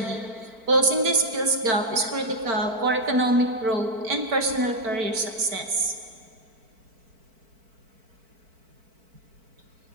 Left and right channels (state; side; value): late; left; 4.5 ms